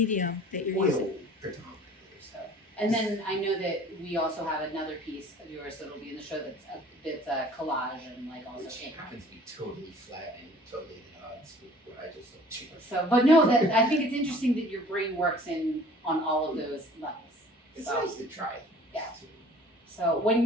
that you're using? Oil predominantly. So, and then I know that we also have another piece of yours that'll be in the show that's a collage and like also Which happens to be totally flat and totally at odds with what I just looked to. So, but no, that I think it's interesting that your brain works on all of those levels. It's So, nice to try. Yeah. So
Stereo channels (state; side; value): normal; both; correlation 0.49